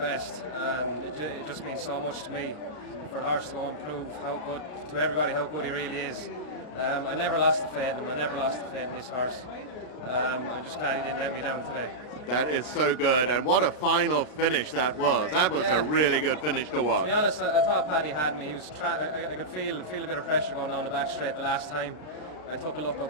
and it just means so much to me for the horse to go and prove how good to everybody how good he really is. I never lost the faith in him. I never lost the faith in this horse. I'm just glad he didn't let me down today. That is so good, and what a final finish that was. That was a really good finish to watch. To be honest, I thought Paddy had me. He was I could feel a bit of pressure going down the back straight the last time. I took a look up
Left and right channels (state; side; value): late; right; 33 ms